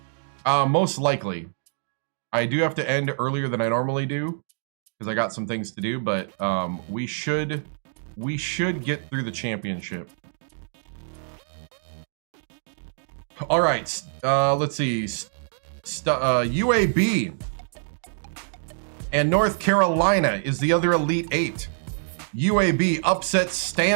Most likely. I do have to end earlier than I normally do because I got some things to do, but we should get through the championship. All right, let's see. UAB and North Carolina is the other Elite Eight. UAB upsets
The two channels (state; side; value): silent; left; digital silence